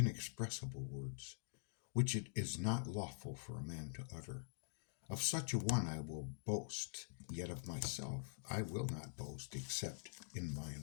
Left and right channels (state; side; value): silent; right; digital silence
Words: words, which it is not lawful for a man to utter. Of such a one I will boast, yet of myself I will not boast, except in my